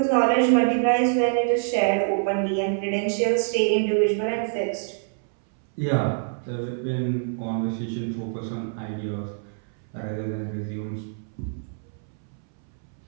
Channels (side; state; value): left; silent; 61 dB below the other